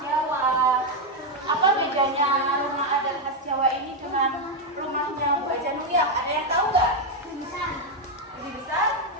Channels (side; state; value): both; normal; correlation 0.03